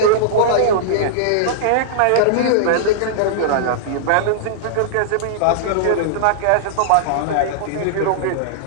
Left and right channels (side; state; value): both; different; correlation -0.02